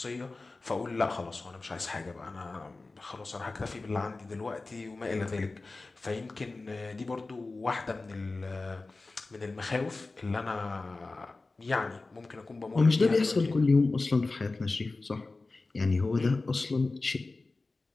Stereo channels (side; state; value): right; quieter; 3.5 dB